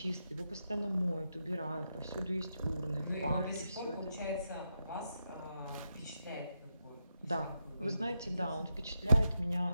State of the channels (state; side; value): inverted; both; correlation -0.85